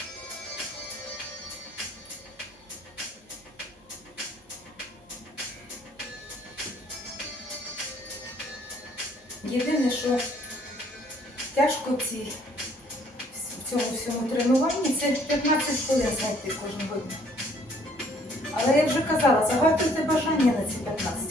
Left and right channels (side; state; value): both; normal; correlation 0.61